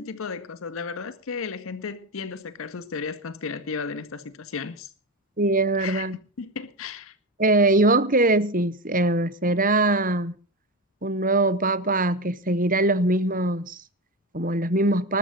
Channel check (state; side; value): normal; both; correlation 0.19